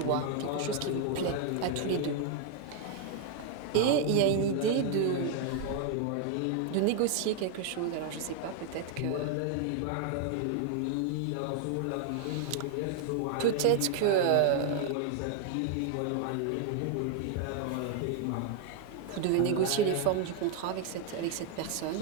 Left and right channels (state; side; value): different; both; correlation 0.00